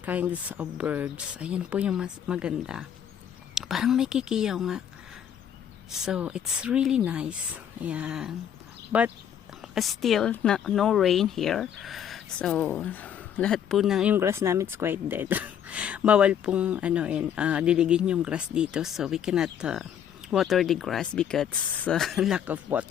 kinds of birds. Ayan po yung mas maganda. Parang may kikiyaw nga. So, it's really nice. Ayan. But, still, no rain here. So, lahat po ng yung grass namin is quite dead. Bawal pong diligin yung grass dito. So, we cannot water the grass because lack of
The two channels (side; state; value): right; quieter; 9.1 dB